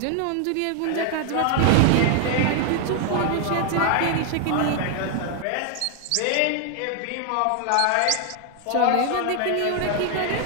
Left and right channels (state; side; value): different; both; correlation 0.00